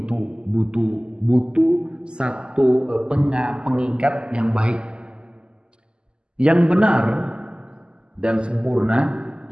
satu pengikat yang baik. Yang benar dan sempurna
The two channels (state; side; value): late; left; 0.049 ms